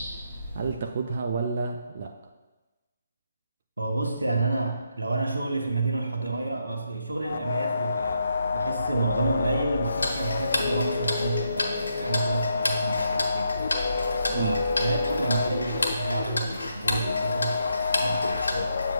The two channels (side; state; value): both; inverted; correlation -0.79